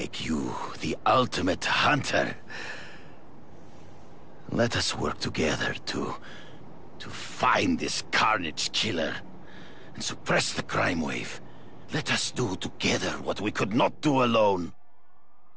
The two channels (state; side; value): identical; both; correlation 1.00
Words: you the ultimate hunter. Let us work together to find this Carnage Killer and suppress the crime wave. Let us do together what we could not do alone.